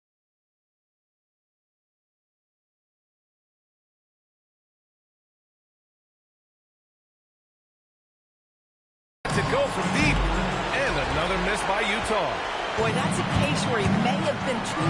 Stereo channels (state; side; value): identical; both; correlation 1.00